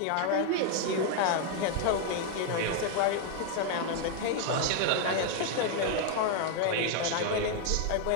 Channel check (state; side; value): different; both; correlation 0.00